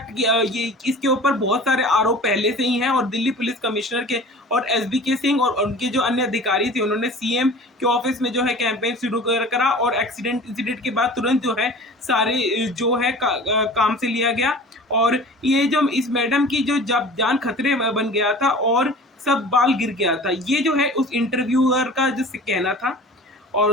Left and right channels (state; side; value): normal; both; correlation 0.41